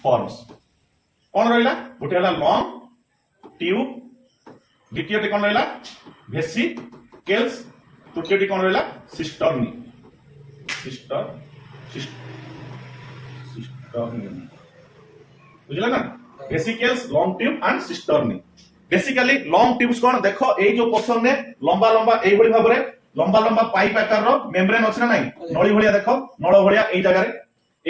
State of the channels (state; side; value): identical; both; correlation 1.00